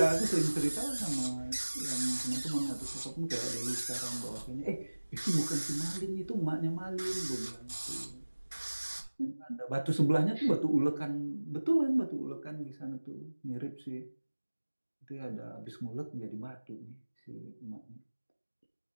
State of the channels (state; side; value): inverted; both; correlation -1.00